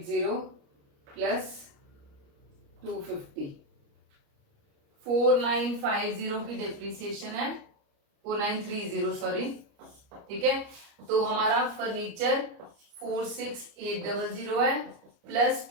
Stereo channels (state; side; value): late; left; 29 ms